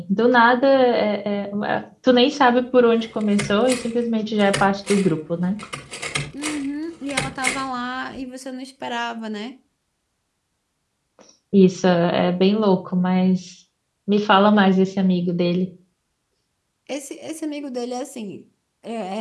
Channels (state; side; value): identical; both; correlation 1.00